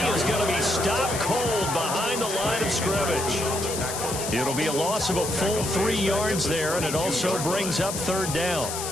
he is going to be stopped cold behind the line of scrimmage. It'll be a loss of a full 3 yards there, and it also brings up 3rd down.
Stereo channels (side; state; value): left; noise; hiss, 5 dB below the sound